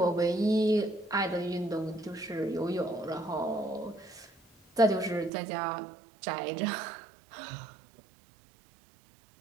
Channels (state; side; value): drops out; left; at 5.3 s